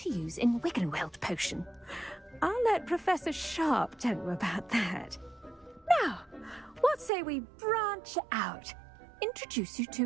use in Wiggenweld potion. I'll let Professor Sharp tell you about that. Now, what say we branch out? Introduce you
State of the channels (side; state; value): left; drops out; at 7.1 s